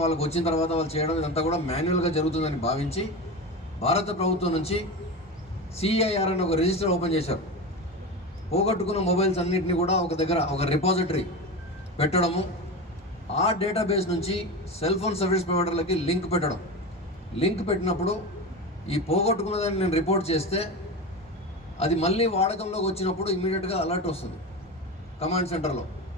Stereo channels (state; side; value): normal; both; correlation 0.24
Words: వాళ్ళకి వచ్చిన తర్వాత వాళ్ళు చేయడం, ఇదంతా కూడా మాన్యువల్గా జరుగుతుందని భావించి భారత ప్రభుత్వం నుంచి CIR అని ఒక రిజిస్టర్ ఓపెన్ చేశారు. పోగొట్టుకున్న మొబైల్స్ అన్నింటినీ కూడా ఒక దగ్గర ఒక రిపాజిటరీ పెట్టడము, ఆ డేటాబేస్ నుంచి సెల్ ఫోన్ సర్వీస్ ప్రొవైడర్లకి లింక్ పెట్టడం. లింక్ పెట్టినప్పుడు ఈ పోగొట్టుకున్నదాన్ని నేను రిపోర్ట్ చేస్తే అది మళ్ళీ వాడకంలోకి వచ్చినప్పుడు ఇమీడియట్గా అలర్ట్ వస్తుంది కమాండ్ సెంటర్లో.